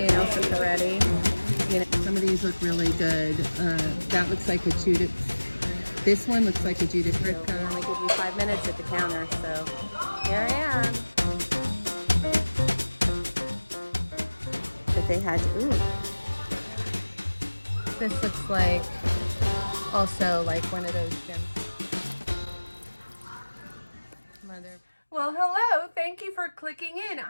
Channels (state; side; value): inverted; both; correlation -1.00